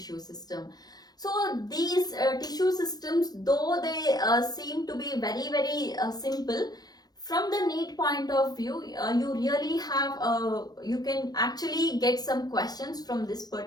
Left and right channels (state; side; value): late; right; 0.19 ms